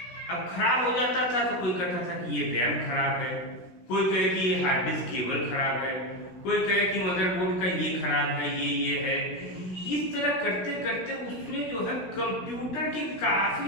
अब खराब हो जाता था तो कोई कहता था कि ये रैम खराब है, कोई कहे कि ये हार्ड डिस्क केबल खराब है, कोई कहे कि मदरबोर्ड का ये खराब है, ये है। इस तरह करते करते उसमें जो है कंप्यूटर की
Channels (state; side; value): late; right; 16 ms